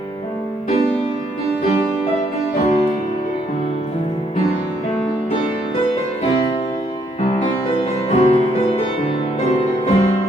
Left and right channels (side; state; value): both; normal; correlation 0.71